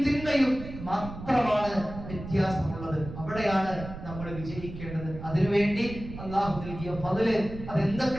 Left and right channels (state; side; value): noise; right; rumble, 11 dB below the sound